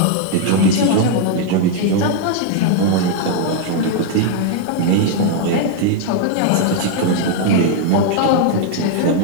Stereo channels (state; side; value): different; both; correlation 0.00